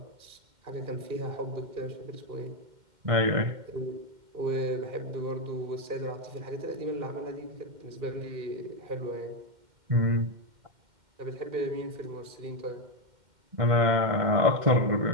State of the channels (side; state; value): left; late; 2.1 ms